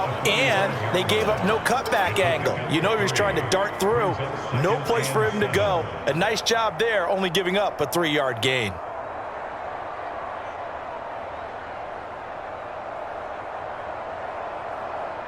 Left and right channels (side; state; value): both; identical; correlation 1.00